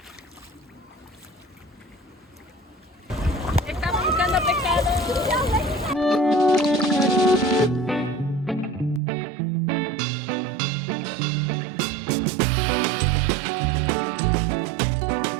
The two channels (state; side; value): drops out; left; at 9.0 s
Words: Estamos buscando pescado.